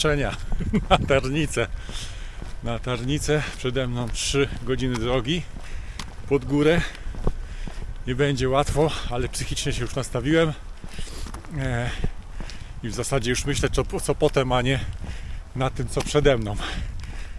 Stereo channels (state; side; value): identical; both; correlation 1.00